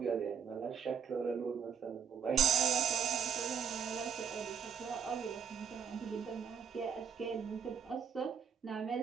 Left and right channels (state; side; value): quieter; left; 7.3 dB